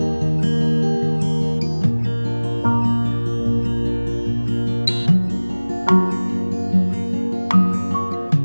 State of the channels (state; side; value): inverted; both; correlation -1.00